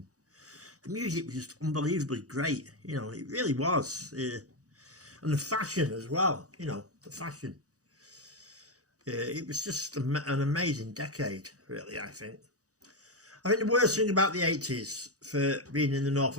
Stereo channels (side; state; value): left; late; 0.66 ms